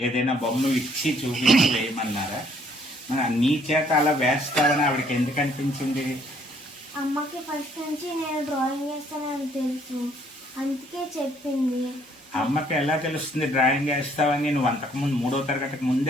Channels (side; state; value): both; normal; correlation 0.64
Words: ఏదైనా బొమ్మ ఇచ్చి చూపించి వేయమన్నారా? నీ చేత అలా వేస్తావని ఆవిడకి ఎందుకు అనిపించింది? అమ్మకి ఫస్ట్ నుంచి నేను డ్రాయింగ్ వేస్తానని తెలుసు, అందుకే చెప్పింది. అమ్మకి ఎలా తెలుస్తుంది డ్రాయింగ్ వేస్తావని? నువ్వు అంతకుముందు 3వ తరగతికి